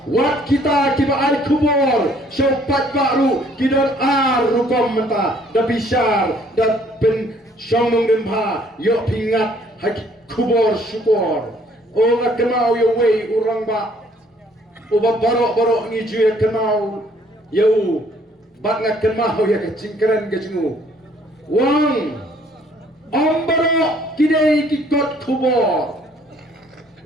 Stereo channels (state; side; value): normal; both; correlation 0.61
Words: Wat kita kiba ar kubur, syaupat baru kidon ar rukom menta, da bisar, da pen syomong demha, yo pingat haki kubur syukur. O nak kenal yo wei orang ba, uba barok ngiju ya kenal, yo bat nak kenal ya kecingkeren kecinggu. Wang, barok kidai kikot kubur.